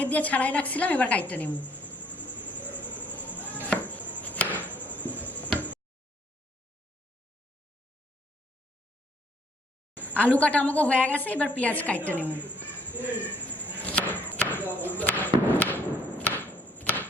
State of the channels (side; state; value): both; normal; correlation 0.63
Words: দিয়ে ছাড়াই রাখছিলাম, এবার কাইটটা নেব। আলু কাটা আমাকে হয়ে গেছে, এবার পেঁয়াজ কাইটটা নেব।